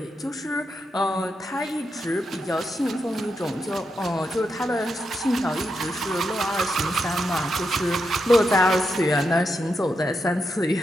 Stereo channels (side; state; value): both; normal; correlation 0.85